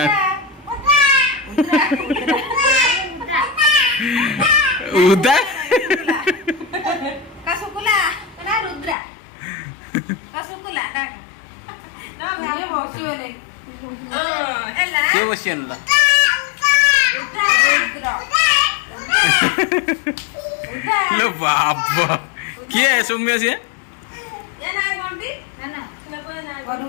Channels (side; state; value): right; drops out; at 9.0 s